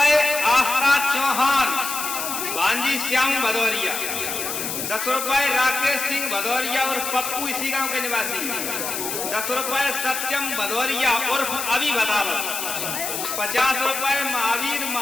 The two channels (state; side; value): noise; left; hiss, 4 dB below the sound